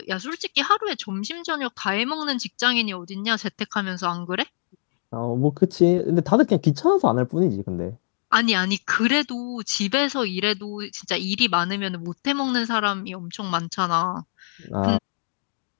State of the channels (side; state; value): right; silent; digital silence